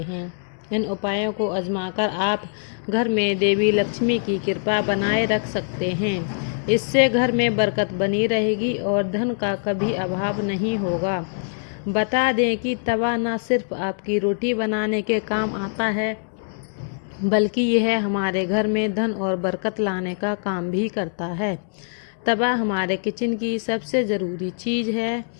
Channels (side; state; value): right; silent; digital silence